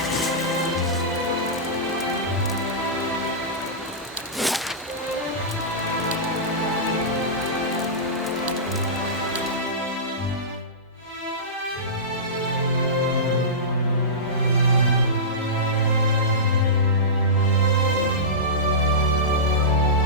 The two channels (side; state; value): both; normal; correlation -0.17